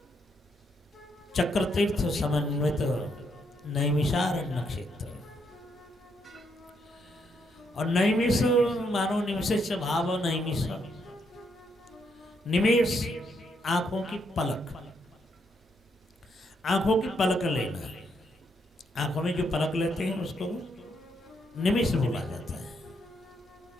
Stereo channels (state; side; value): normal; both; correlation 0.76